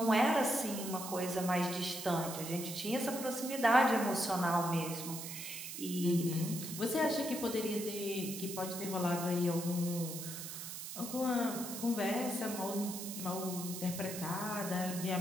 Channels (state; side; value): noise; right; hiss, 8 dB below the sound